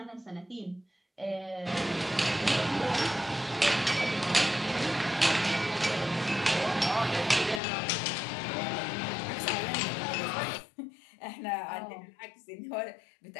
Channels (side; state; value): right; drops out; at 7.6 s